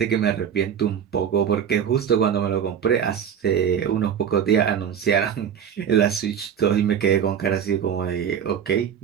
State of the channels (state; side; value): quieter; left; 8.3 dB